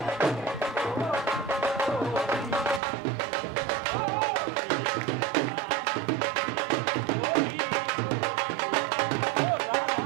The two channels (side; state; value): left; drops out; at 2.8 s